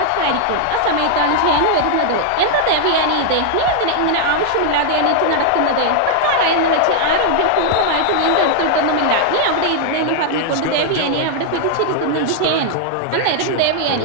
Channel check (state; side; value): different; both; correlation 0.00